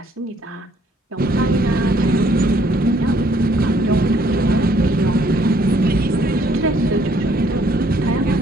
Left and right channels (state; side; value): normal; both; correlation 0.64